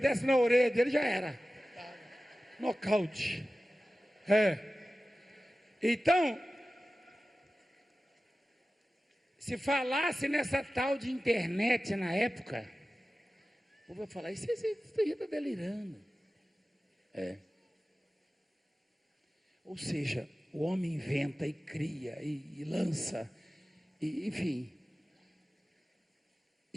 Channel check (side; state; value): both; normal; correlation 0.95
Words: na orelha dele, já era. Nocaute. Então, se falasse nessa tal de internet na época, o povo vai falar, isso aí está delirando. Ou seja, o homem inventa e cria e lança, enfim.